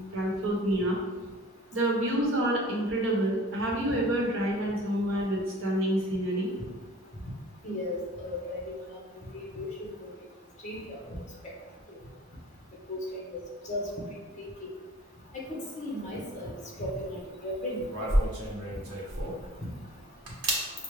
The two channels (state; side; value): normal; both; correlation 0.47